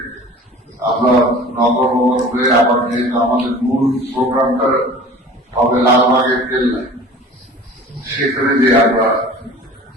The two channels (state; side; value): normal; both; correlation 0.42